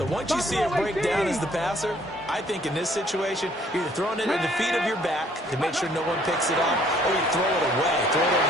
once you see it break down as the passer, I think in this situation, you're either throwing it at the feet of your back to make sure no one picks it up, or you throw it away, throw it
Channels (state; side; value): normal; both; correlation 0.62